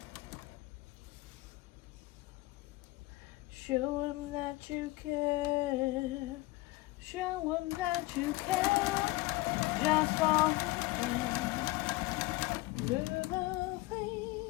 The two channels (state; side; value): quieter; right; 20.5 dB